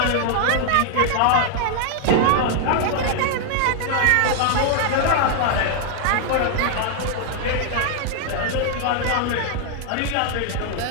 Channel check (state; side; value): different; both; correlation 0.00